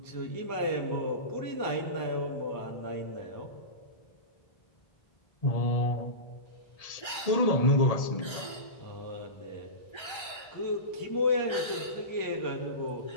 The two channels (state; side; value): late; right; 1.3 ms